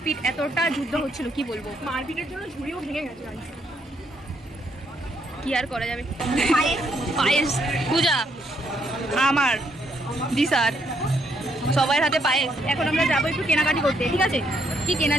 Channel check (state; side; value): normal; both; correlation 0.74